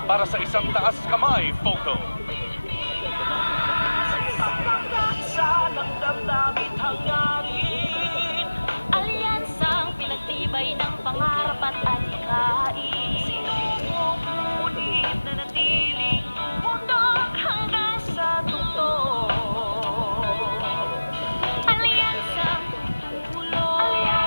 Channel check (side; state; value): both; inverted; correlation -1.00